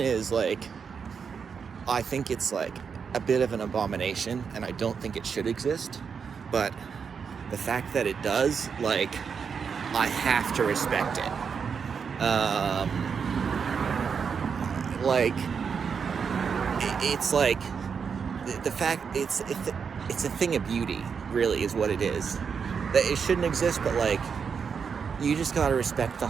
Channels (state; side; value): quieter; left; 6.3 dB